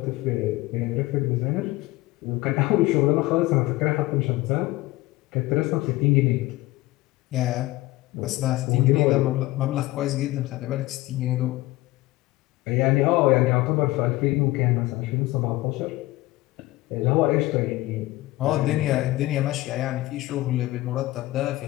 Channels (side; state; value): right; quieter; 18.6 dB